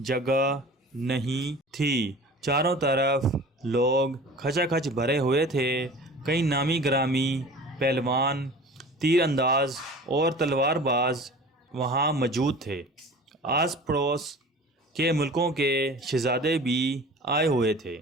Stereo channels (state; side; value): normal; both; correlation 0.41